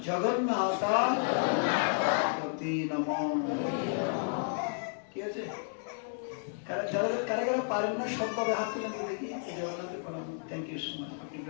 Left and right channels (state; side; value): silent; right; digital silence